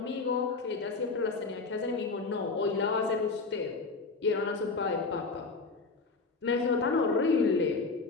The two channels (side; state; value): right; quieter; 4.1 dB